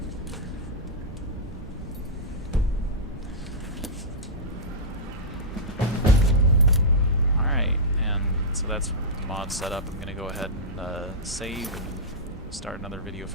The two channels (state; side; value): normal; both; correlation -0.12